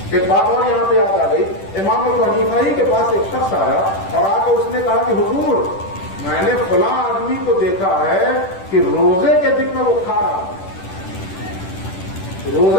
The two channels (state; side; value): late; right; 10 ms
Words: ایک بات اور یہاں پہ یاد آ گئی، امام ابو حنیفہ کے پاس ایک شخص آیا اور آ کر اس نے کہا کہ حضور میں نے فلاں آدمی کو دیکھا ہے کہ روزے کے دن میں وہ کھا رہا تھا،